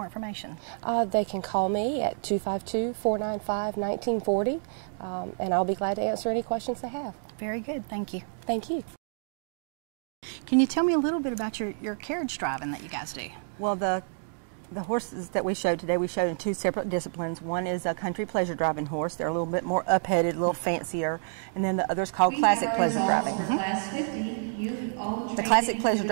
information? They can call me at 252-495-1940, and I'll be glad to answer any questions they have. Very good. Thank you. Thank you. Can you tell me a little bit about your carriage driving that you guys do? Well, the horses that we showed today, we showed in 2 separate disciplines. One is a country pleasure driving horse. They're a little bit more up-headed, a little fancier. And then the other is called classic pleasure driving. The classic pleasure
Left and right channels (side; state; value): left; silent; 59 dB below the other